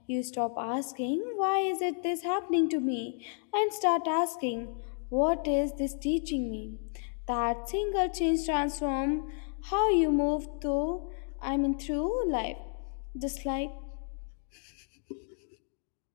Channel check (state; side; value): silent; right; 57 dB below the other